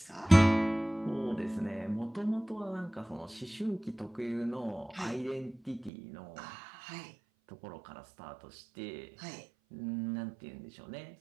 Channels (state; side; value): drops out; left; at 5.9 s